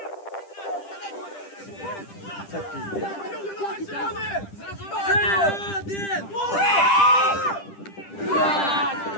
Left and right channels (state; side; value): late; right; 10 ms